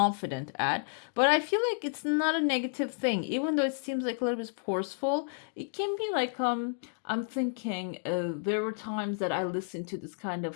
at. But I feel like it's not a negative thing, even though it seems like a little bit forceful. It can be like I'm thinking there were times that I listened to this kind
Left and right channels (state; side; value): silent; right; digital silence